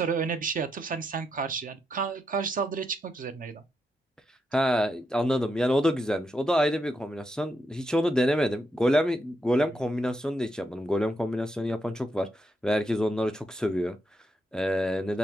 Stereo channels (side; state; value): both; normal; correlation 0.82